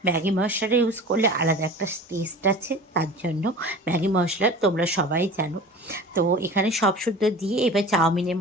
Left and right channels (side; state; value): both; normal; correlation 0.38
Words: ম্যাগি মশলাটা ইউজ করলে আলাদা একটা টেস্ট আছে, তার জন্য ম্যাগি মশলা তোমরা সবাই জানো। তো এখানে সব শুদ্ধ দিয়ে এবার চাউমিনের